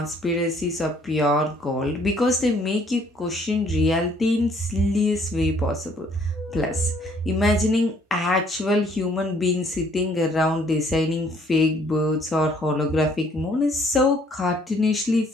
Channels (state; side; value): normal; both; correlation 0.62